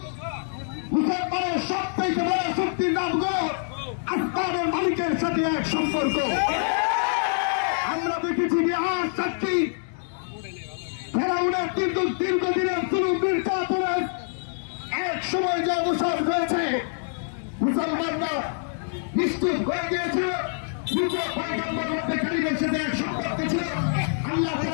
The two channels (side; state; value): right; silent; digital silence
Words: মুসলমানের সবথেকে বড় শক্তির নাম হলো আসমানের মালিকের সাথে এক সম্পর্ক। আমরা দেখেছি বিহার সাক্ষী ফেরাউনের কিন্তু দীর্ঘদিনের জুলুম নির্যাতনের এক সময় যে অবসর হয়েছে, মুসলমানরা নিশ্চিত হয়ে গিয়েছে নিজের পয়গম্বর মধ্যে কারিমের সাথে এক সম্পর্ক ছিল। আল্লাহ